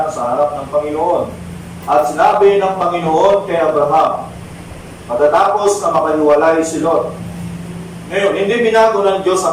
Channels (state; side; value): identical; both; correlation 1.00